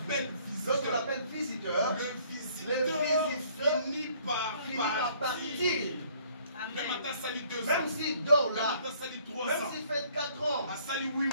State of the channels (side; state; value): both; inverted; correlation -0.60